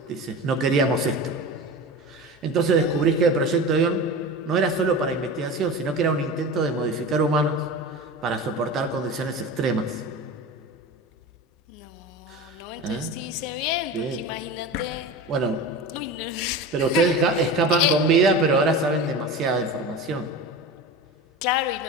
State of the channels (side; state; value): both; normal; correlation 0.30